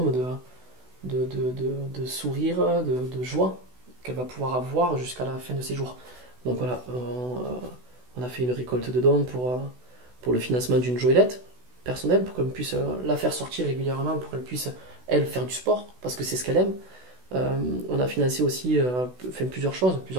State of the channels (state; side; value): late; left; 16 ms